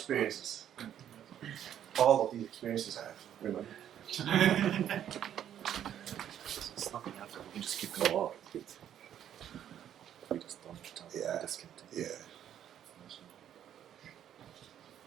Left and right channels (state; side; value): quieter; left; 10.2 dB